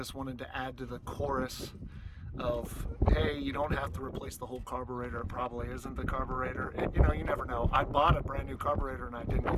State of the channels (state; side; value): identical; both; correlation 1.00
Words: wanted to add to the chorus of, hey, you don't have to replace the whole carburetor. It probably isn't the carburetor. And, you never know. I bought a brand new carburetor and I didn't